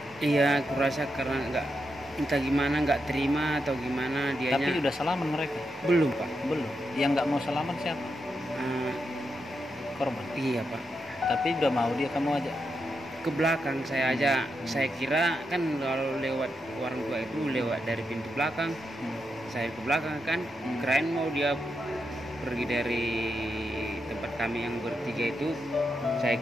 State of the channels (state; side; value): normal; both; correlation 0.84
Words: iya, aku rasa karena entah gimana, nggak terima atau gimana dianya. Tapi udah salaman mereka? Belum Pak. Belum. Yang nggak mau salaman siapa? Korban. Iya Pak. Tapi udah mau dia kamu aja? Ke belakang saya aja. Saya kira kan kalau lewat warung tua itu lewat dari pintu belakang. Saya ke belakang kan, keren mau dia pergi dari tempat kami yang bertiga itu. Saya